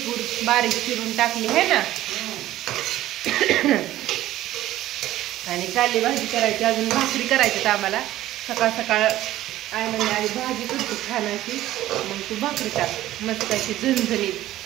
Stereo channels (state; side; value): quieter; left; 14.5 dB